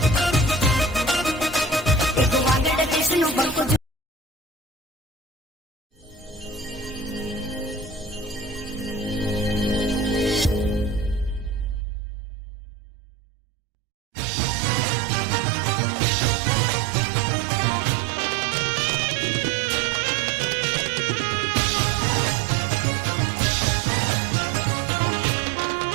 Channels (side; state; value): left; drops out; at 11.9 s